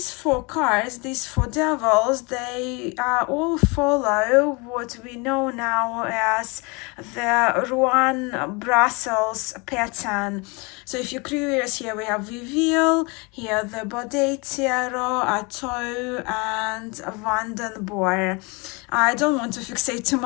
four cards, these four devils, they all follow what we know now as the Rouen Brussels pattern. So if you're curious, here we have Viville, here the Baudet Tarot, Atto, and Vandenborre. I don't want to fixate too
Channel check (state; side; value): quieter; right; 28.9 dB